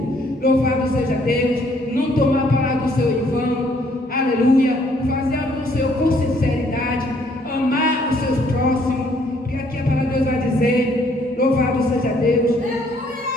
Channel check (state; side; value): normal; both; correlation 0.65